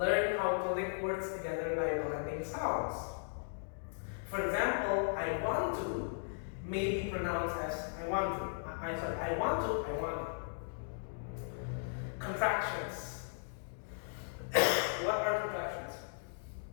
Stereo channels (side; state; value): right; silent; digital silence